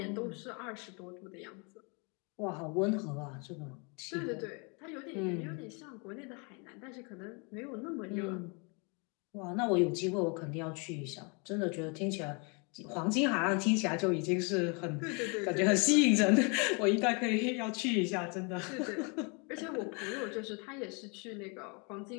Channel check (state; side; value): quieter; right; 33.4 dB